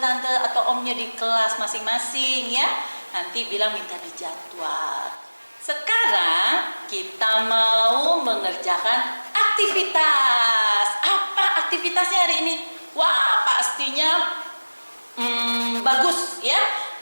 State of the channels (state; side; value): inverted; both; correlation -1.00